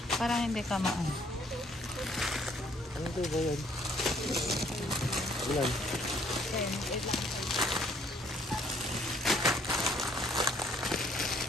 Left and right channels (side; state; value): both; normal; correlation 0.63